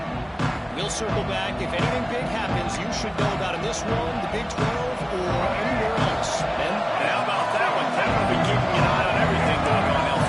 We'll circle back. If anything big happens, you should know about in this one, the Big 12, or anywhere else. Ben? How about that one? Kevin will be keeping an eye on everything going on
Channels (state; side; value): identical; both; correlation 1.00